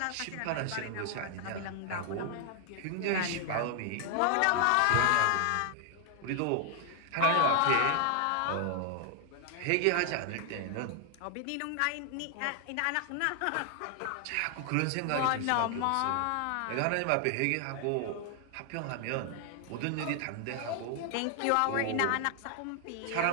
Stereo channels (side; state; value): both; different; correlation 0.00